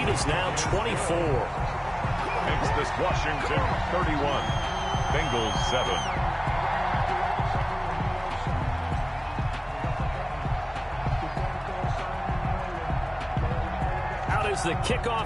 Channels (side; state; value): both; identical; correlation 1.00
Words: is now 24. Makes this Washington 31. Bengals 7. Is the